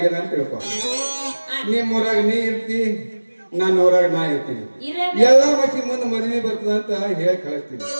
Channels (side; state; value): both; inverted; correlation -1.00